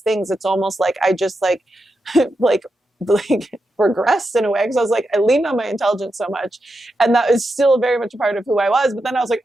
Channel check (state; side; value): normal; both; correlation 0.87